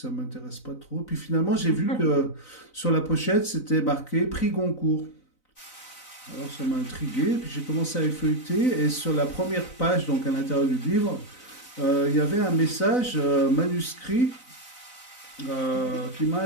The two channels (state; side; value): late; right; 4.0 ms